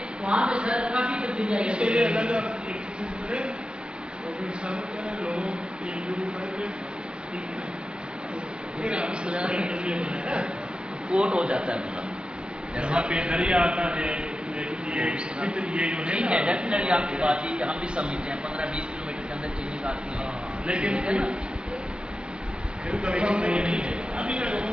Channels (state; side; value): late; left; 0.050 ms